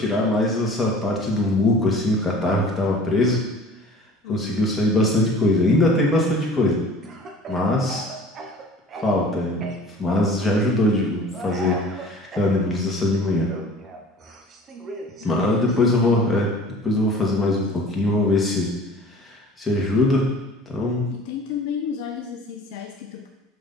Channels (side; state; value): both; normal; correlation 0.45